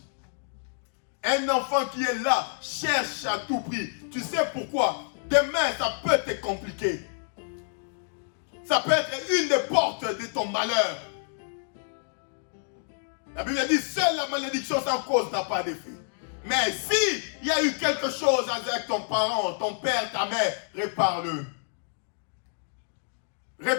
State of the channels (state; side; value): silent; right; digital silence